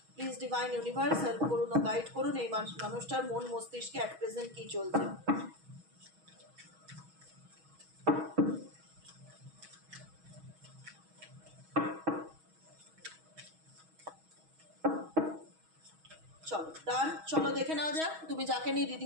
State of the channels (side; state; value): left; late; 6.3 ms